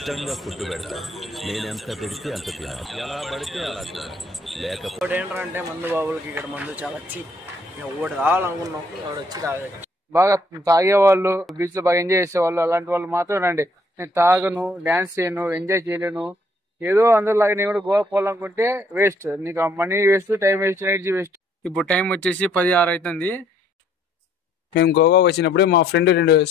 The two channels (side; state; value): both; normal; correlation 0.65